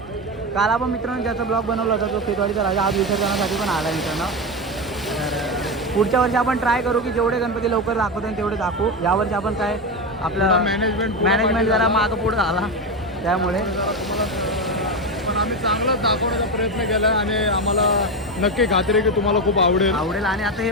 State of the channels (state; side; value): normal; both; correlation 0.15